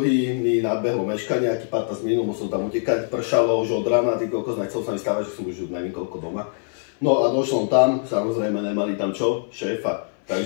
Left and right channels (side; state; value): right; silent; 59 dB below the other